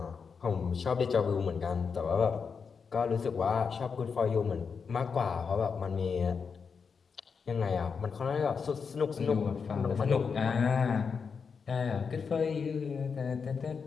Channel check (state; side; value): quieter; right; 5.8 dB